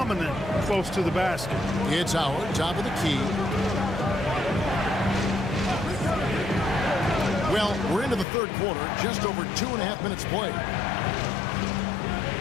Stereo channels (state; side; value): drops out; right; at 8.2 s